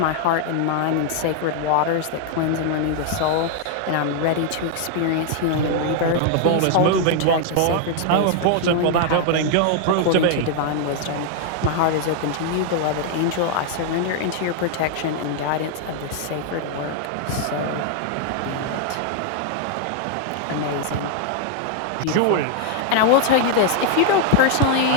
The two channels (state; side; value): different; both; correlation 0.00